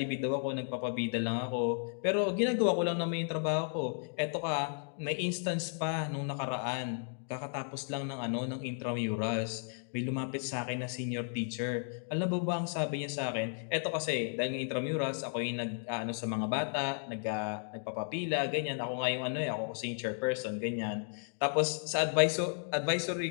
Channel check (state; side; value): silent; right; 55 dB below the other